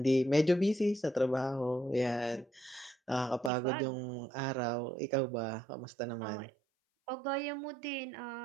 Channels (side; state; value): left; drops out; at 3.5 s